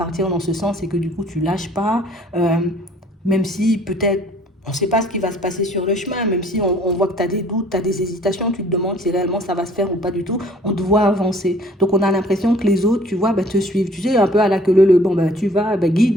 dans ce sens et que du coup, tu lâches pas, euh, même si peut-être. On ne sait pas ce qui va se passer sur le chemin, même si on voit que tu as des doutes, tu as des hésitations, tu te demandes si réellement ça va se faire ou pas du tout, on te voit avancer. Donc on a l'impression que les autres, tu vois, te suivent. Tu sais, un peu à la queue leu, bon, tu vas, guide,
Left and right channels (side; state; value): both; normal; correlation 0.55